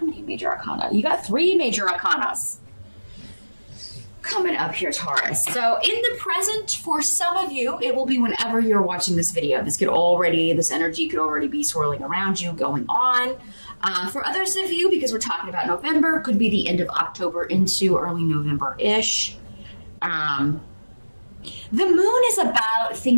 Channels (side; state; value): both; inverted; correlation -1.00